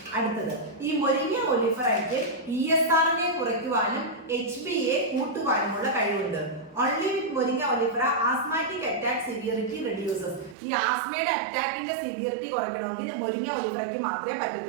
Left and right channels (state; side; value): drops out; left; at 10.6 s